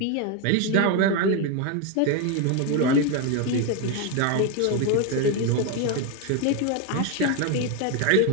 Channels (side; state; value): both; different; correlation 0.02